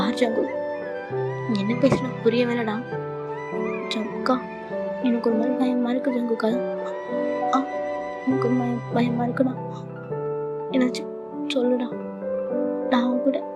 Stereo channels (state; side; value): identical; both; correlation 1.00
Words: ஜங்கு, என்ன பேசணும் புரிய வேணடா. ஜங்குக்கா எனக்கு ஒரு மாதிரி பயமா இருக்கு ஜங்குக்கா. எனக்கு ஒரு பயமா இருக்குடா, என்னாச்சும் சொல்லுடா. நான் அவன் கூட